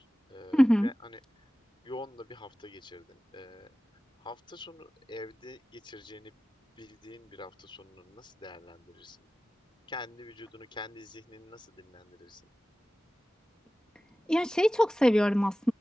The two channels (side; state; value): both; normal; correlation 0.96